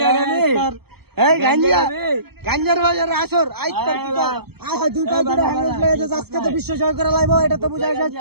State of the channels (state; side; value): late; left; 0.96 ms